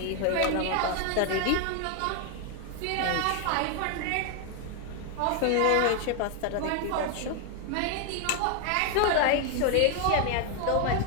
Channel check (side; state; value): both; different; correlation 0.01